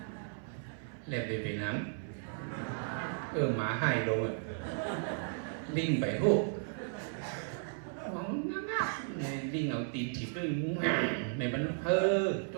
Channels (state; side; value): silent; left; 54 dB below the other